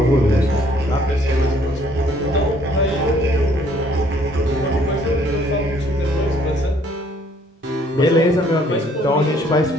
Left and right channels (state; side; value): normal; both; correlation 0.62